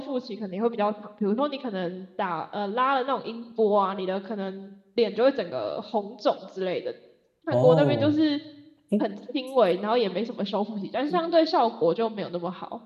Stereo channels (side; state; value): both; identical; correlation 1.00